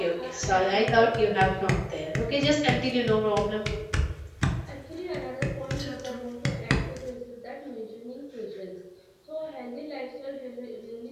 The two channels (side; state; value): both; identical; correlation 1.00